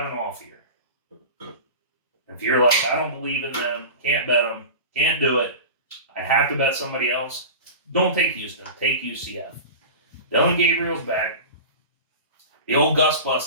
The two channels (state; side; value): inverted; both; correlation -0.32